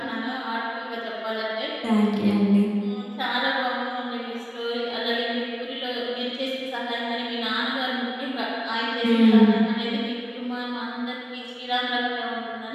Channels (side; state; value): both; identical; correlation 1.00